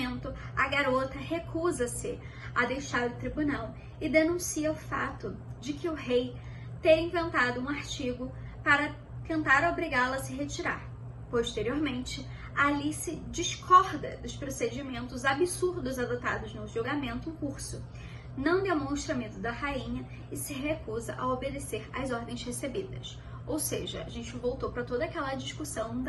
a garota recusa-se a deixar o tribunal e denuncia o fato de que o rei ter inventado um artigo para tentar obrigá-la a se retirar. Posteriormente, Alice discorda dos procedimentos absurdos adotados no julgamento em curso, não demonstra medo da rainha e se recusa a obedecer às ordens recebidas. Ou seja, a gente voltou para toda aquela discussão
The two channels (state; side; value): identical; both; correlation 1.00